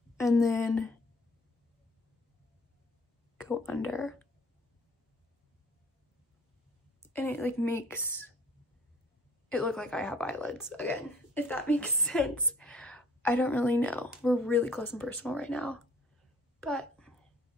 and then go under. And it like makes it look like I have eyelids again, if that makes sense. I don't really know. We're really close and personal right now, but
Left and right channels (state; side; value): normal; both; correlation 0.56